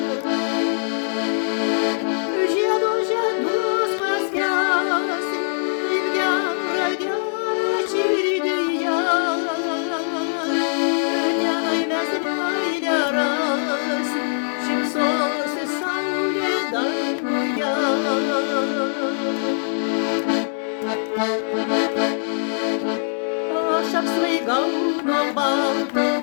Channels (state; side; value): silent; right; 64 dB below the other